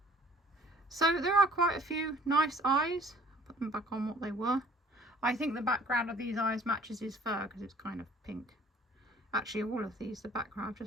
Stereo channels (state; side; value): normal; both; correlation 0.54